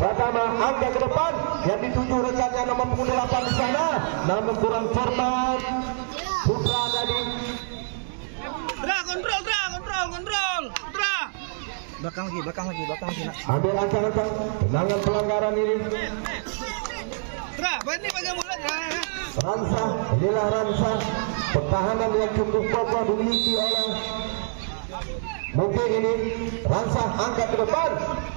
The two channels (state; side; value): silent; left; digital silence